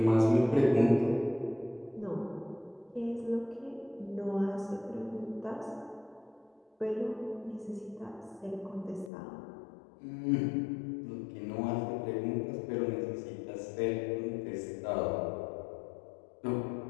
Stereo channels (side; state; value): right; drops out; at 9.1 s